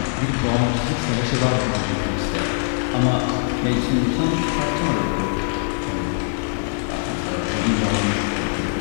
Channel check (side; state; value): right; silent; 64 dB below the other